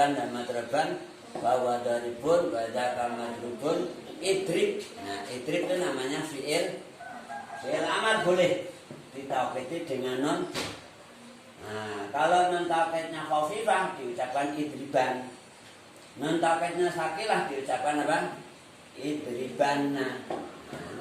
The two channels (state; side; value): identical; both; correlation 1.00